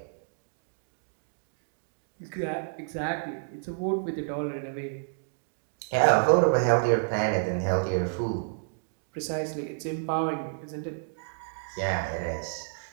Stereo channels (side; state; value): left; silent; digital silence